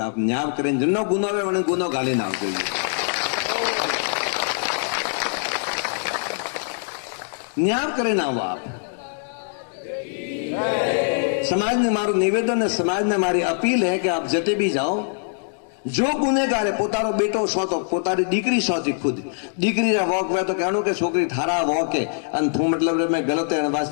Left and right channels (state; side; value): silent; right; digital silence